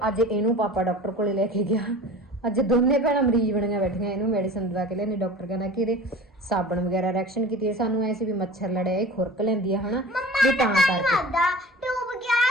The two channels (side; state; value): both; normal; correlation 0.39